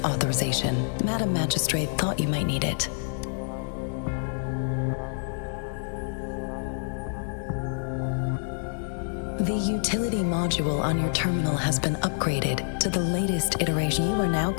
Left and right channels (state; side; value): silent; right; 60 dB below the other